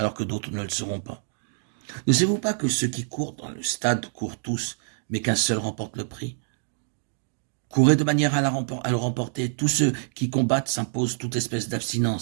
que d'autres ne le seront pas. Ne savez-vous pas que ceux qui courent dans le stade courent tous, mais qu'un seul remporte le prix? Courez de manière à le remporter. Tous ceux qui combattent s'imposent toute espèce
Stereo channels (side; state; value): left; silent; digital silence